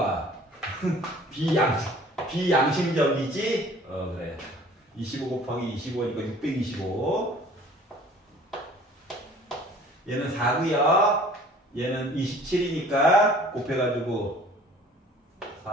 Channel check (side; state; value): both; normal; correlation 0.50